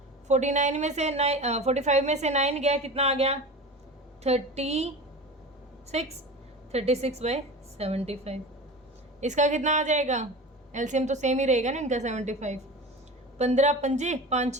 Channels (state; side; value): normal; both; correlation 0.32